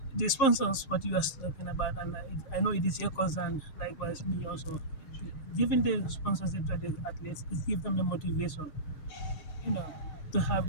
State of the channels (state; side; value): late; right; 6.5 ms